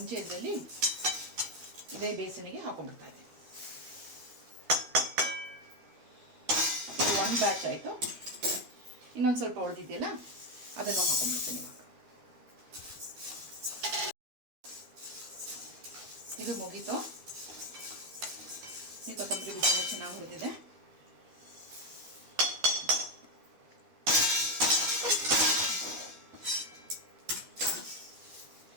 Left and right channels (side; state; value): left; late; 12 ms